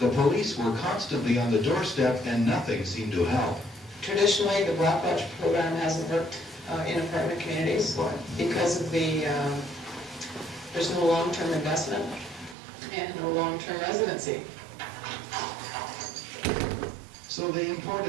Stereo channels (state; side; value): drops out; left; at 12.6 s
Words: police were constantly on the doorstep and nothing seemed to help. Traditionally, the Black Watch program hasn't worked in apartment communities because of there's no long-term investment and no long-term residency. So they